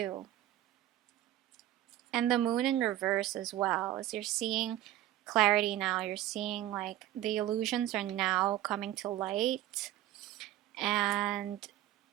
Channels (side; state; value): left; quieter; 13.7 dB